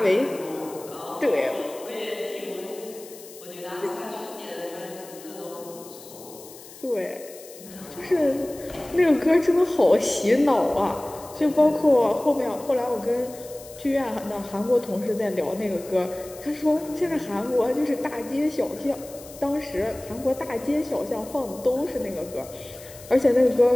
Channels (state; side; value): noise; left; hiss, 18 dB below the sound